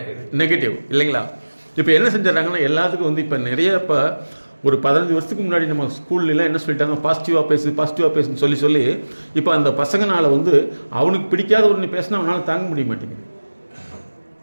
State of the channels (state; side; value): inverted; both; correlation -1.00